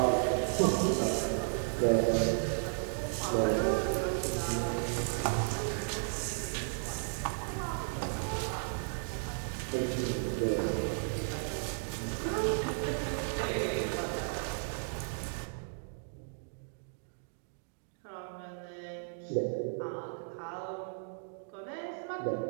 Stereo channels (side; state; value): left; silent; digital silence